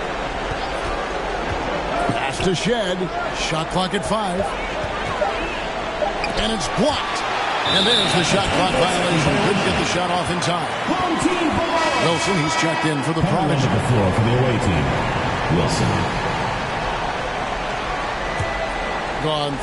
Pass to Shed. Shot clock at 5. And it's blocked. And there's the shot clock violation. Couldn't get the shot off in time. Wilson, he's checked in for the Prodigy. The floor for the away team. Wilson. Gone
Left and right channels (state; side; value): identical; both; correlation 1.00